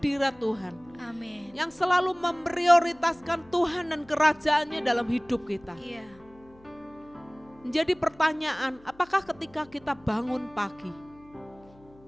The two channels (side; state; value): left; noise; hum, 27 dB below the sound